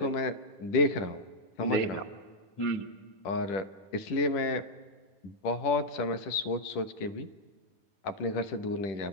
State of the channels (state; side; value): late; right; 10 ms